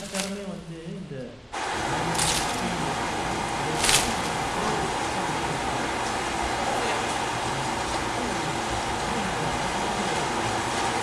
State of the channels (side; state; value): both; identical; correlation 1.00